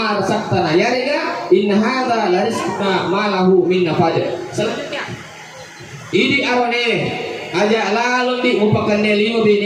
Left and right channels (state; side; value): identical; both; correlation 1.00